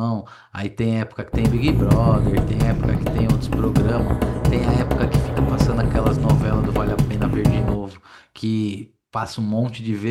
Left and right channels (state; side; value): identical; both; correlation 1.00